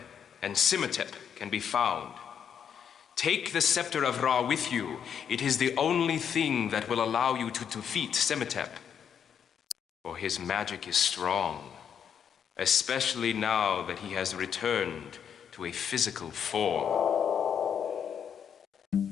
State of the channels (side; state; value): right; quieter; 8.0 dB